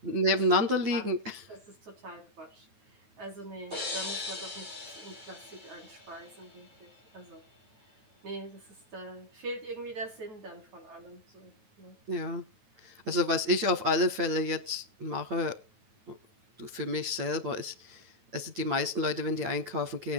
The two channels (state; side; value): late; left; 9.3 ms